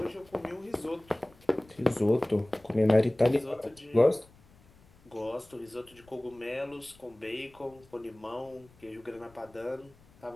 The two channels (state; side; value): noise; left; rumble, 27 dB below the sound